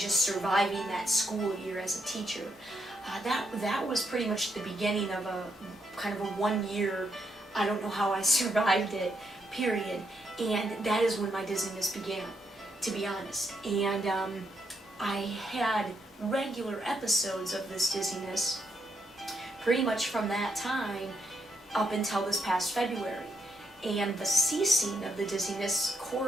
surviving that school year as a teacher. That was pretty much the beginning of a kind of a 1 year, I don't know how I survived it, period. And that is when my dizziness began, to be honest. And I had regular episodes of this dizziness pretty much from that time up until this past February. And the ceasing of the dizziness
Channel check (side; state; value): both; normal; correlation 0.78